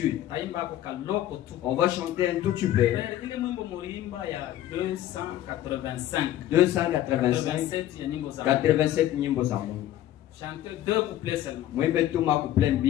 On va chanter un tout petit peu. 285. 87 nyimbo za Mungu. Chanter 2 couplets seulement. Mwimbe tu makuple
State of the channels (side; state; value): right; quieter; 12.8 dB